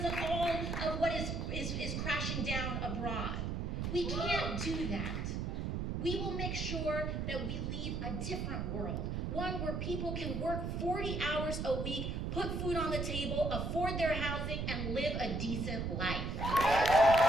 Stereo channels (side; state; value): right; noise; rumble, 2 dB below the sound